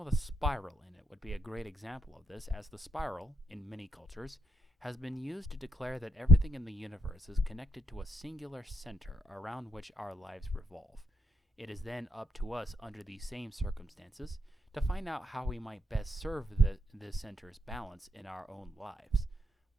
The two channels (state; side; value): normal; both; correlation 0.77